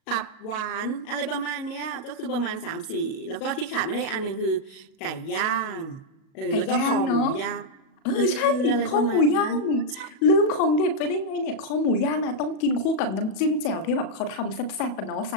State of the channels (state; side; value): late; right; 37 ms